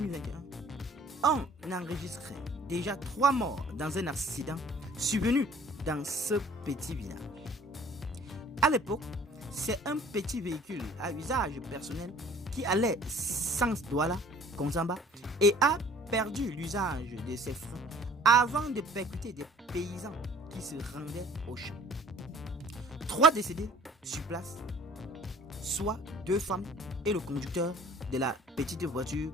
on enregistrait déjà 3 morts dans un accident survenu dans ce petit village. À l'époque, c'est un petit véhicule à usage personnel qui allait sans Douala, Konsamba, et a perdu l'usage de ses freins avant de percuter des paysans qui se rendaient au champ. 3 décédés sur place, soit 2 femmes et le conducteur de la petite voiture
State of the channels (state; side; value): normal; both; correlation 0.53